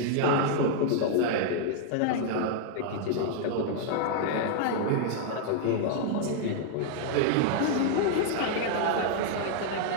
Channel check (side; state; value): both; different; correlation -0.01